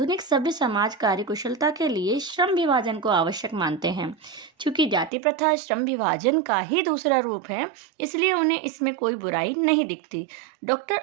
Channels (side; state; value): left; drops out; at 5.1 s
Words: सभ्य समाज कार्यकुशलता के लिए श्रम विभाजन को आवश्यक मानते हैं। चूंकि जाति प्रथा श्रम विभाजन का ही दूसरा रूप है, इसलिए उन्हें इसमें कोई बुराई नहीं दिखती। डॉक्टर